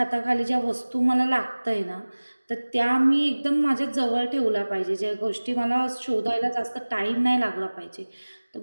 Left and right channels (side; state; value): both; inverted; correlation -1.00